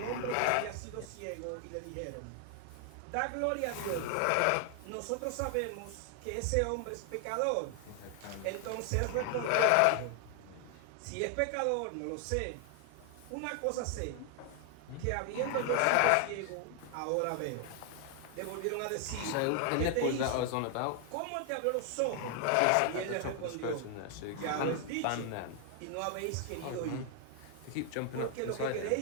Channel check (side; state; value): both; different; correlation 0.00